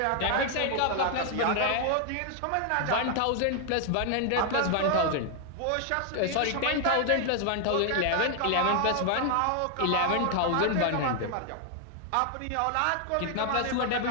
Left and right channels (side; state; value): both; different; correlation 0.00